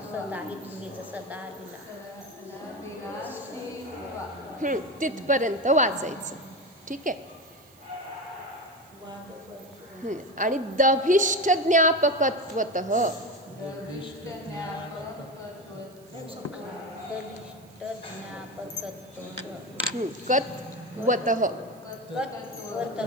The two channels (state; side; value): noise; right; hiss, 28 dB below the sound